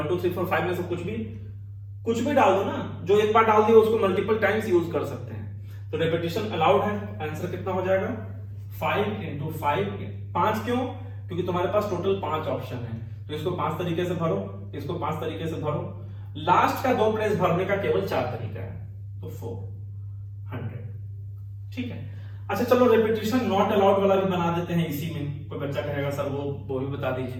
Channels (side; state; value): both; identical; correlation 1.00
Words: 2 3 4 5 में से कुछ भी डाल दो ना, जो एक बार डाल दिया उसको मल्टीपल टाइम्स यूज कर सकते हैं। तो रेपिटेशन अलाउड है। आंसर कितना हो जाएगा? 5 × 5। 5 क्यों? क्योंकि तुम्हारे पास टोटल 5 ऑप्शन है, तो इसको 5 तरीके से भरो, इसको 5 तरीके से भरो। लास्ट का 2 प्लेस भरने का केवल 4 तरीका है, तो 400। ठीक है। अच्छा चलो रेपिटेशन नॉट अलाउड वाला भी बना देते हैं इसी में। कोई बच्चा कहेगा सर वो भी बता